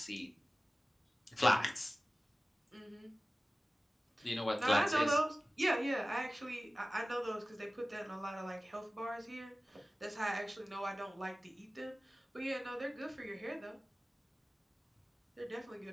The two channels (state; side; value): normal; both; correlation 0.97